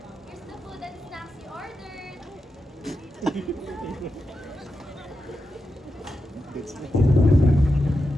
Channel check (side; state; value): both; normal; correlation 0.88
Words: Here's the food and snacks you ordered. That's